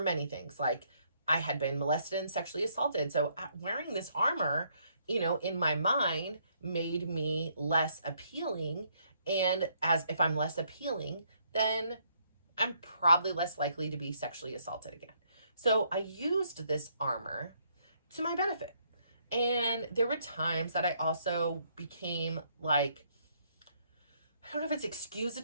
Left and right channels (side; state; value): both; inverted; correlation -0.70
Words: many things. Like I had been molested and sexually assaulted. So wearing this armor, in my mind made me less appealing. And as if I'm less appealing, then I'm probably less likely to be sexually assaulted again. So I used this armor to my benefit. And there were times that I also became like, I don't know if it's